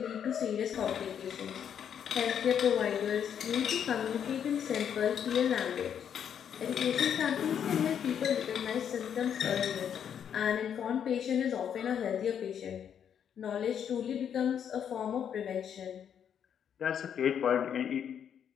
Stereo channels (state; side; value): quieter; right; 8.5 dB